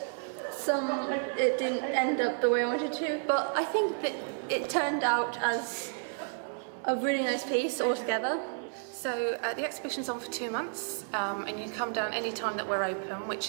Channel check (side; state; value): left; silent; digital silence